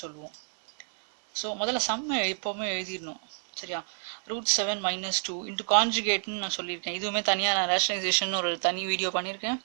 சொல்லுவோம். ஸோ முதல்ல சம்மை எப்போவுமே எழுதிடணும். சரியா? root 7 minus 2 இன்ட்டு கான்ஜுகேட்னு நான் சொல்லியிருக்கேன். இதுவுமே தனியாக நான் ரேஷனலைசேஷன் ஒரு தனி வீடியோ பண்ணியிருக்கேன்.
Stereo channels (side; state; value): left; silent; 59 dB below the other